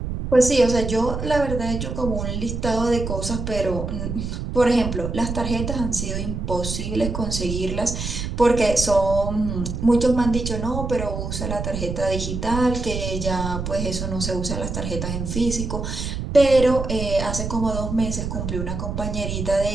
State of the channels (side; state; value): right; noise; rumble, 4 dB below the sound